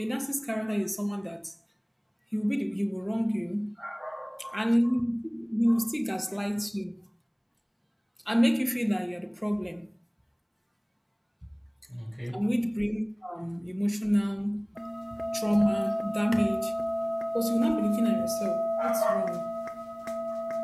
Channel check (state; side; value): identical; both; correlation 1.00